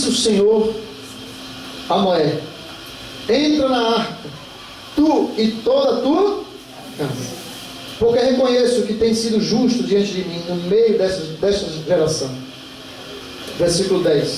o Senhor a Noé: entra na arca, tu e toda a tua casa, porque reconheço que tem sido justo diante de mim no meio desta geração. Versículo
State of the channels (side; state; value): both; identical; correlation 1.00